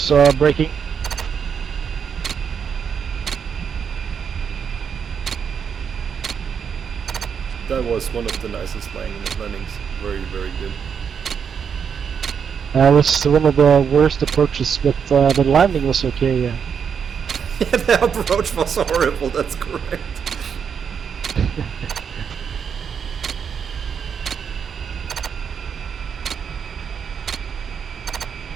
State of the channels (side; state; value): left; quieter; 7.1 dB